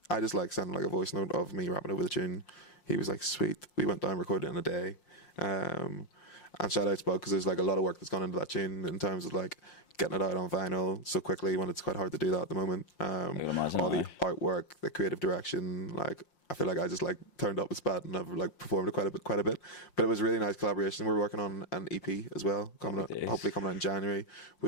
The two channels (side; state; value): right; late; 5.6 ms